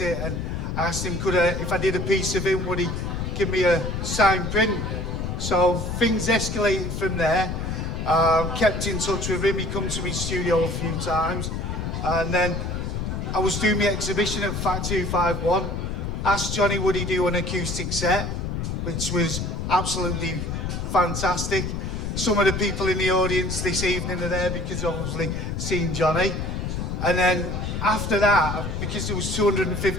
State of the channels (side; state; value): left; noise; rumble, 3 dB below the sound